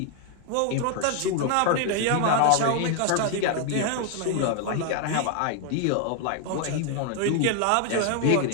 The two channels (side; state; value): both; different; correlation 0.00